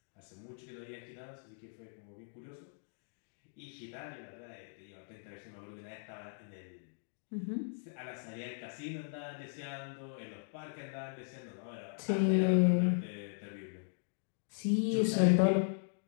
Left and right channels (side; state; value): right; silent; digital silence